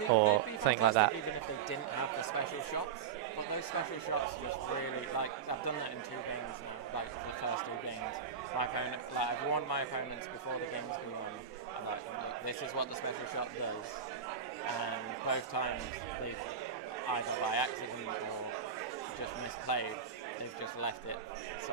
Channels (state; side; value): quieter; left; 7.0 dB